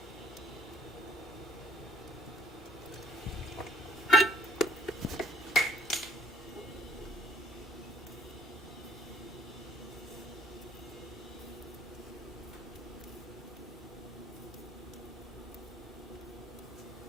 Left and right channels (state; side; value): normal; both; correlation 0.59